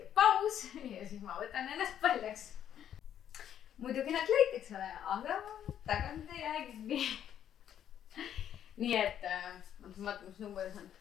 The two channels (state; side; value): quieter; right; 10.0 dB